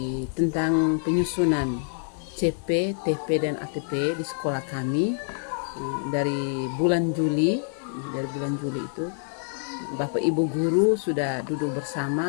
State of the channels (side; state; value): right; silent; digital silence